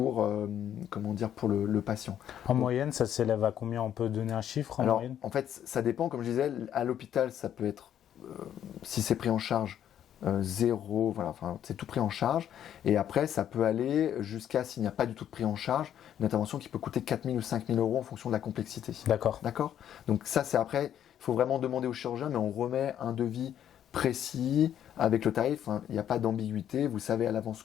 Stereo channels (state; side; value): quieter; right; 10.2 dB